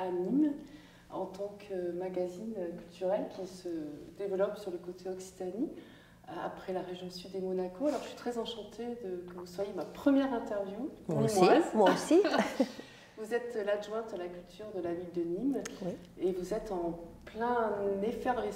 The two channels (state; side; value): identical; both; correlation 1.00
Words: Nîmes, en tant que magazine culturel qui se développe sur le côté Occitanie, après la région sud et Monaco. Alors, je suis très enchantée que vous soyez ma première interview. Moi aussi. Moi aussi. Vous êtes l'adjointe à la culture de la ville de Nîmes, oui. Et vous êtes en pleine